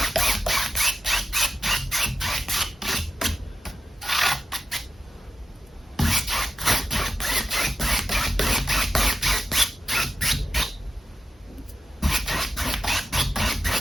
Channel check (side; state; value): both; normal; correlation 0.90